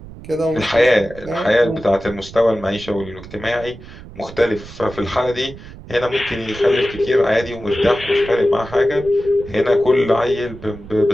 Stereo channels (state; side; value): noise; right; rumble, 16 dB below the sound